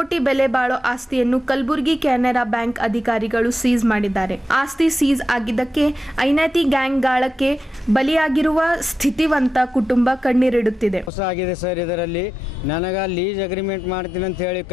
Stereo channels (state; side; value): normal; both; correlation 0.89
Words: ಬೆಲೆ ಬಾಳೋ ಆಸ್ತಿಯನ್ನು ಕಲಬುರಗಿ ಕೆನರಾ ಬ್ಯಾಂಕ್ ಅಧಿಕಾರಿಗಳು ಸೀಸ್ ಮಾಡಿದ್ದಾರೆ. ಆಸ್ತಿ ಸೀಸ್ ಆಗಿದ್ದಕ್ಕೆ ಐನಾತಿ ಗ್ಯಾಂಗ್ ಗಾಳಕ್ಕೆ ಬಲಿಯಾಗಿರುವ ಸ್ಥಿತಿವಂತ ಕುಟುಂಬ ಕಣ್ಣೀರಿಡುತ್ತಿದೆ. ಆಗಿದೆ ಸರ್, ಇದರಲ್ಲಿ ನನಗ ಲೀಸ್ ಅಗ್ರಿಮೆಂಟ್ ಮಾಡ್ತೀನಿ ಅಂತ ಹೇಳಿ